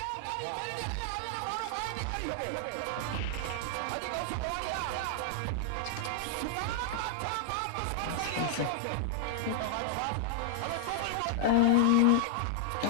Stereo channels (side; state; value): both; different; correlation -0.01